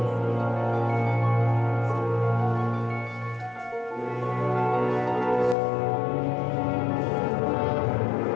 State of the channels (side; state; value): right; drops out; at 5.6 s